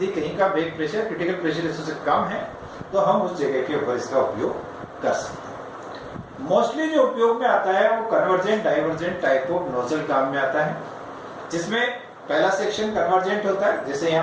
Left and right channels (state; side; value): identical; both; correlation 1.00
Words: कहीं का बैक प्रेशर क्रिटिकल प्रेशर उससे कम है तो हम उस जगह के ऊपर इसका उपयोग कर सकते हैं। मोस्टली जो उपयोग में आता है वो convergent divergent type of nozzle काम में आता है, जिसमें पहला सेक्शन कन्वर्जेंट होता है, जैसे